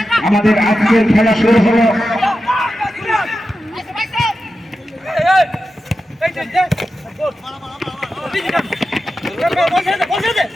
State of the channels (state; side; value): normal; both; correlation 0.91